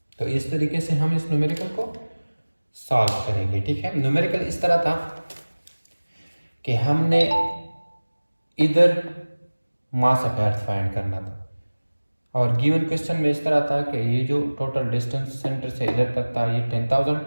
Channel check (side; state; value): both; inverted; correlation -1.00